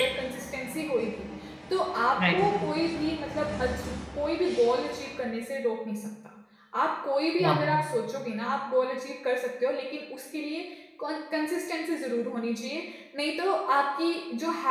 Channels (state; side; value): identical; both; correlation 1.00